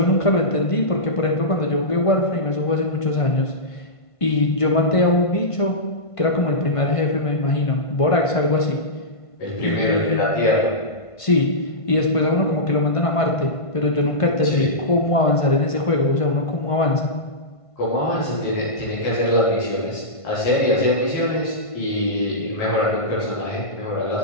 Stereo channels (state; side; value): late; right; 1.5 ms